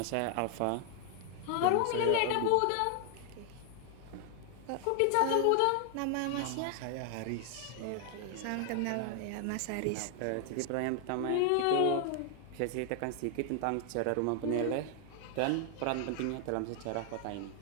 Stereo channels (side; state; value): both; different; correlation 0.00